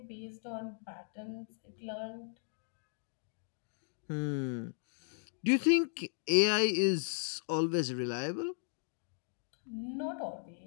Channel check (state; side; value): silent; right; digital silence